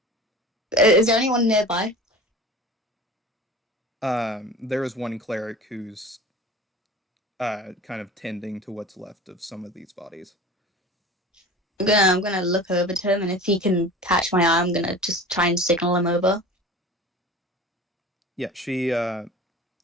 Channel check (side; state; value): both; normal; correlation 0.38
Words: Is there anyone nearby? There is one cleric who's kind of tending to what's left of some of these bodies. I'm gonna look over to him, and if he can catch my eye, I'm gonna just try and signal him over. Yeah, she